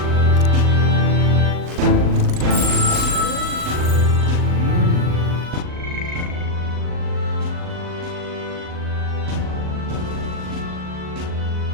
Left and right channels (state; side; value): late; left; 39 ms